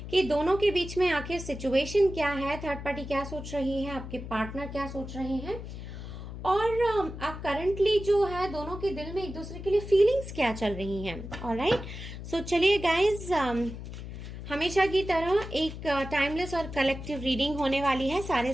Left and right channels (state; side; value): noise; left; hum, 10 dB below the sound